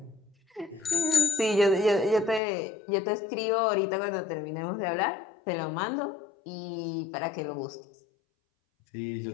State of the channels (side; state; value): right; drops out; at 2.4 s